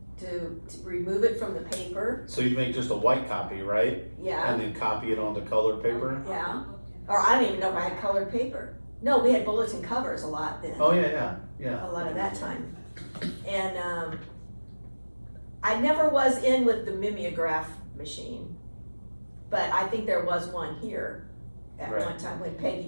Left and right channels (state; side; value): inverted; both; correlation -1.00